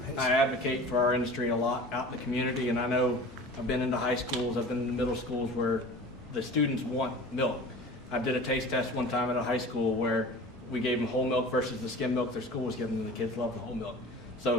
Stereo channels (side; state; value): both; normal; correlation 0.39